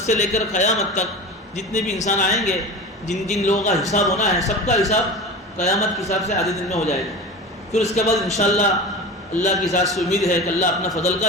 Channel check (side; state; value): both; normal; correlation 0.31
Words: لے کر قیامت تک جتنے بھی انسان آئیں گے، جن جن لوگوں کا حساب ہونا ہے، سب کا حساب قیامت کے حساب سے آدھے دن میں ہو جائے گا. پھر اس کے بعد انشاءاللہ اللہ کی ذات سے امید ہے کہ اللہ اپنا فضل